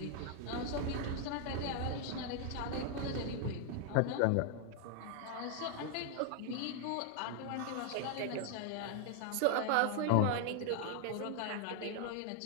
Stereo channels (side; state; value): both; different; correlation 0.00